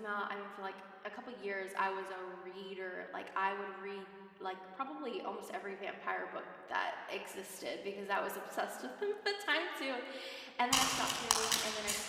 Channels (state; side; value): identical; both; correlation 1.00